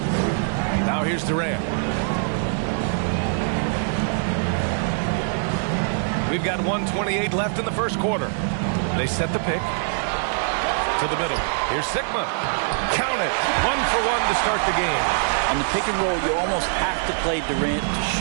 Now here's Durant. We've got 1:28 left in the first quarter. They set the pick to the middle. Here's Sigma. Count it. 1 for 1 to start the game. On the pick and roll, you almost have to play Durant to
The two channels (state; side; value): silent; left; 56 dB below the other